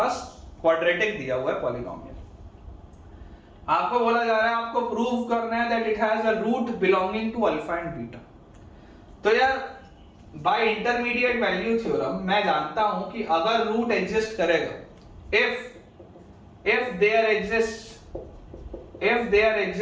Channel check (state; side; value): identical; both; correlation 1.00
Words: क्वाड्रेटिक दिया हुआ है, पॉलिनोमियल। आपको बोला जा रहा है आपको प्रूव करना है that it has a root belonging to alpha and beta. तो यार बाय इंटरमीडिएट वैल्यू थ्योरम मैं जानता हूं कि अगर रूट एग्जिस्ट करेगा, if there